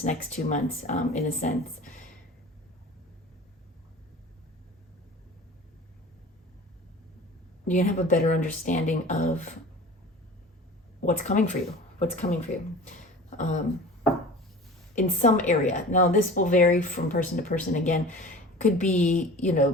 next 2 months, in a sense. You're going to have a better understanding of what's coming for you, in some area. Now, this will vary from person to person. Again, could be,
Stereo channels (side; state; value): both; normal; correlation 0.39